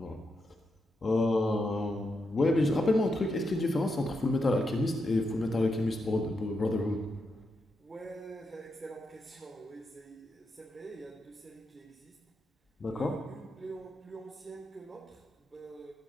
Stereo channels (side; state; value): both; normal; correlation 0.84